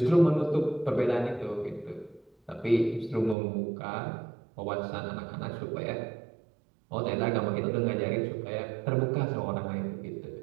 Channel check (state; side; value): drops out; left; at 3.4 s